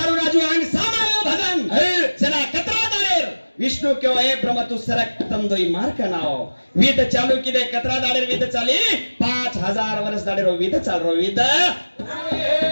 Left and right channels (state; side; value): inverted; both; correlation -1.00